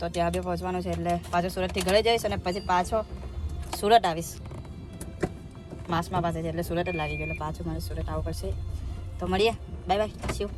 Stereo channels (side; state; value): both; identical; correlation 1.00